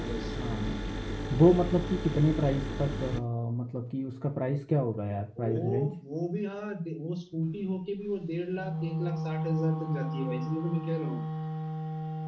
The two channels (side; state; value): both; identical; correlation 1.00